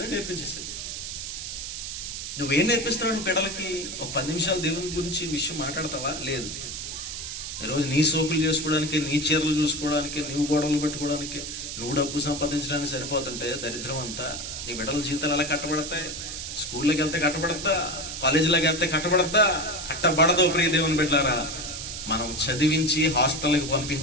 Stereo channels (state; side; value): noise; right; hiss, 6 dB below the sound